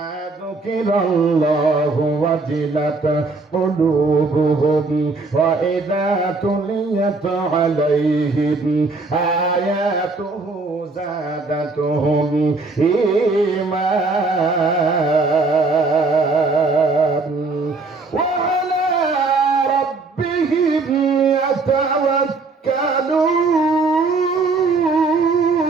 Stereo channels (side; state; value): left; quieter; 3.7 dB